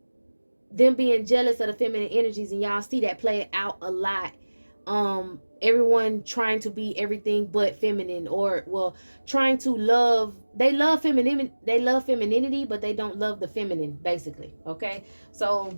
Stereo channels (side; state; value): both; inverted; correlation -1.00